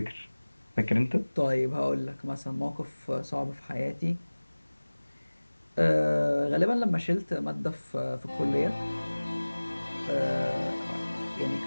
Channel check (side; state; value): both; inverted; correlation -1.00